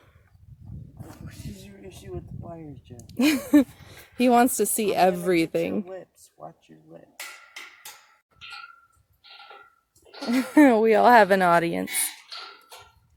What is your issue with the wires, Jen? He wants to see everything. Your lips. Watch your lips. We all have an audience.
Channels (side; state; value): both; identical; correlation 1.00